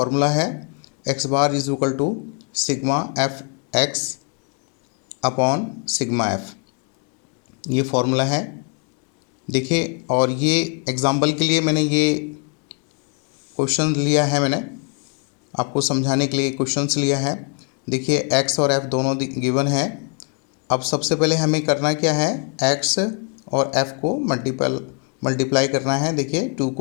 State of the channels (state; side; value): quieter; right; 38.7 dB